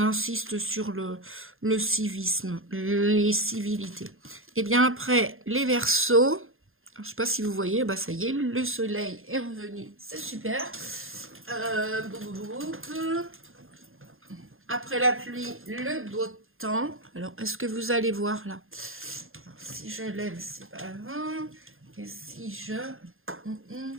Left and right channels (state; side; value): late; left; 0.60 ms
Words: sur le civisme, les civilités. Et bien après, les Verseaux, je ne sais pas si vous voyez, bah ça y est, le soleil est revenu, c'est super. Après la pluie, le beau temps. Alors, est-ce que vous allez voir là? Alors, si je lève, c'est pas grave. Et si je...